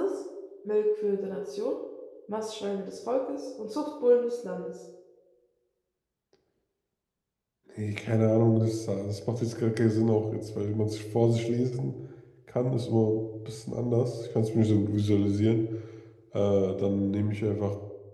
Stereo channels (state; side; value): identical; both; correlation 1.00